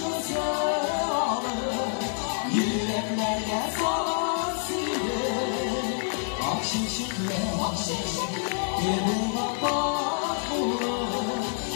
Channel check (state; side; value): silent; right; 60 dB below the other